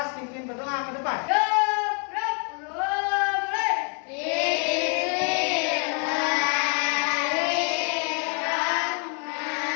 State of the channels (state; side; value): quieter; right; 39.6 dB